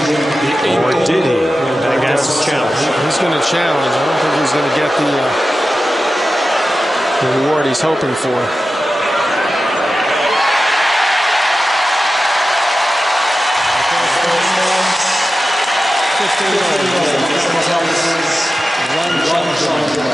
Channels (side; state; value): both; normal; correlation 0.93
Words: Or did he? Agassi challenge. He's going to challenge. I don't think he's going to get the reward he's hoping for.